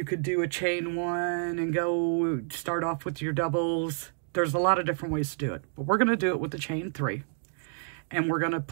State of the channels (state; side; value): silent; left; digital silence